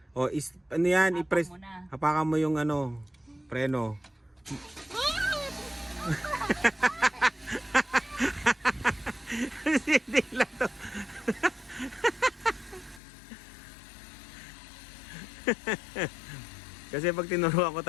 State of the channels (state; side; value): drops out; right; at 13.0 s